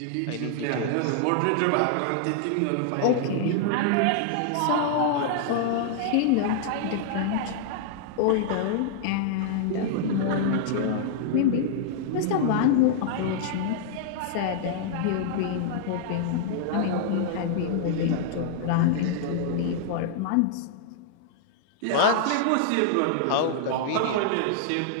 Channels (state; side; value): different; both; correlation -0.01